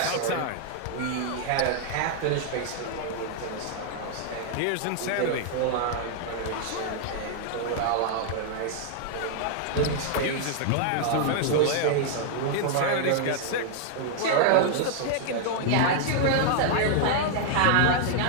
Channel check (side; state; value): both; different; correlation 0.00